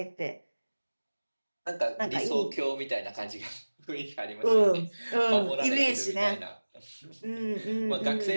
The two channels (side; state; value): both; inverted; correlation -1.00